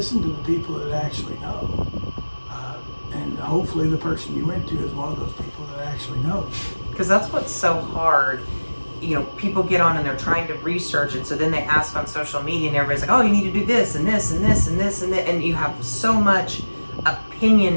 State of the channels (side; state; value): both; inverted; correlation -1.00